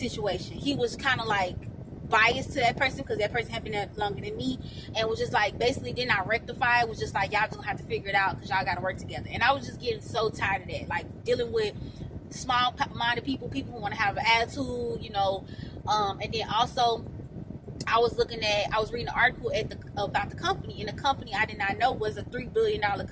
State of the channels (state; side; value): identical; both; correlation 1.00